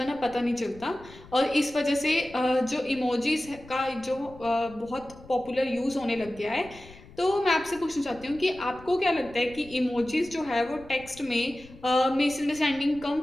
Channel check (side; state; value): left; noise; rumble, 21 dB below the sound